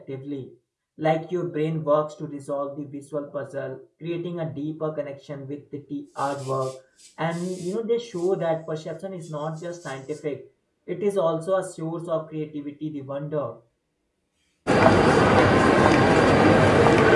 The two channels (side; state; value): both; identical; correlation 1.00